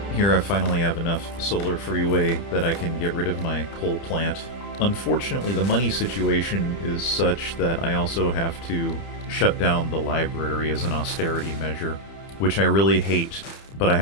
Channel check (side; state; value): right; late; 30 ms